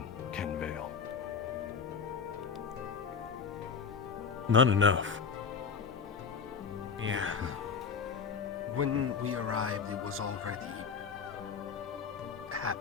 Kenvale? Not enough. Yeah. When we arrived, it was already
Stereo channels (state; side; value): quieter; right; 6.0 dB